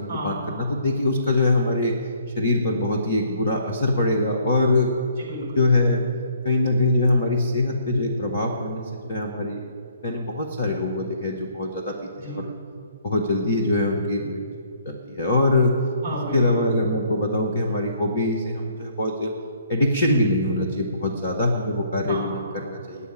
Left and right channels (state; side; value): inverted; both; correlation -0.63